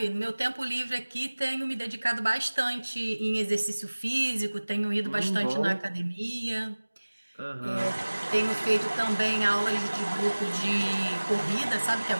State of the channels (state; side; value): inverted; both; correlation -1.00